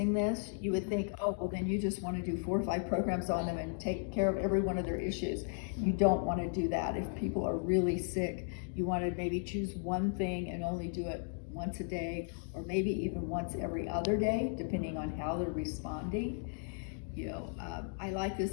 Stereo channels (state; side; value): silent; right; 54 dB below the other